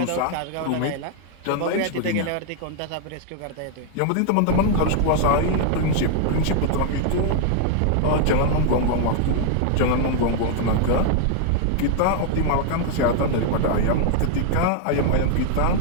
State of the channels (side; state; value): both; different; correlation 0.00